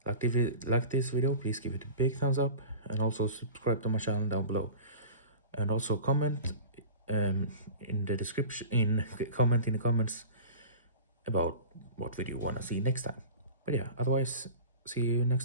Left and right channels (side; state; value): both; inverted; correlation -0.36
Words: like this video, please give it a big thumbs up and also subscribe to my channel down below, and also comment in the description, comment in the comments about what video you want to see next time. But yeah, otherwise, see you next